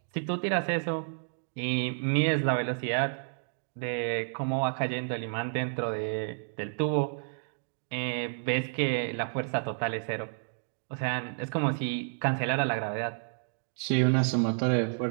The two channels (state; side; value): silent; left; digital silence